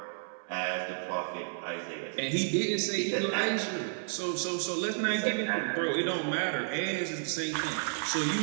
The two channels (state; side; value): silent; left; 57 dB below the other